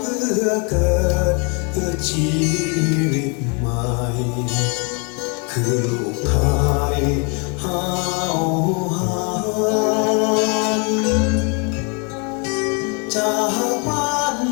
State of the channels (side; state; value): right; quieter; 34.9 dB